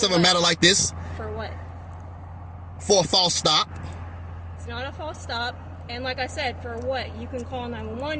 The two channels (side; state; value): both; identical; correlation 1.00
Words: of a matter like this, For what? for a false stop. It's not a false stop. And like I said, for what? You can call